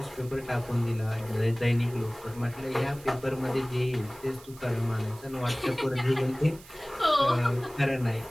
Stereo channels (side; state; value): right; noise; hiss, 21 dB below the sound